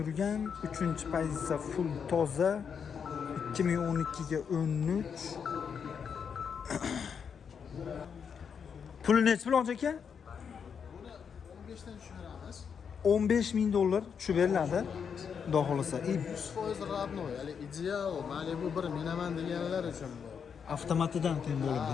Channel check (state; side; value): quieter; right; 6.9 dB